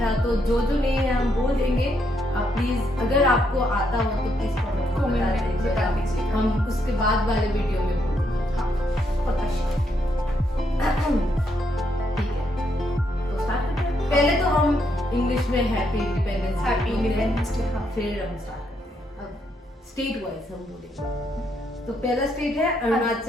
था, तो जो नहीं है हम बोल देंगे। आप प्लीज अगर आपको आता हो तो प्लीज कमेंट में बता दीजिए, हम उसके बाद वाले वीडियो में बोल देंगे। हाँ, ठीक है, तो स्टार्ट करते हैं। पहले तो हम इंग्लिश में हैप्पी इंडिपेंडेंस डे, फिर हम स्टार्ट करते हैं। अब स्टेट वाइज हम बोलेंगे। तो पहला स्टेट है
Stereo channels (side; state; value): both; normal; correlation 0.76